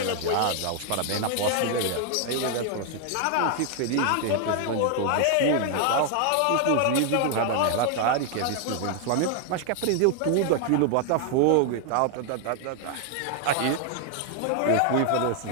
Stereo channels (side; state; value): both; different; correlation 0.00